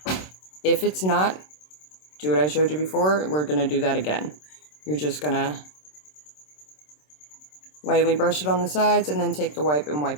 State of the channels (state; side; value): late; right; 27 ms